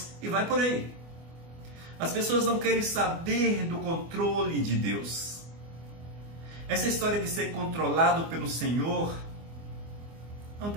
e vai por aí. As pessoas não querem saber do controle de Deus. Essa história de ser controlado pelo Senhor não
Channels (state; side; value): late; left; 24 ms